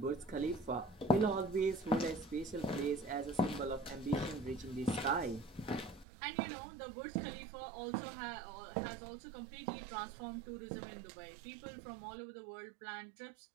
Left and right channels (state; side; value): drops out; left; at 6.1 s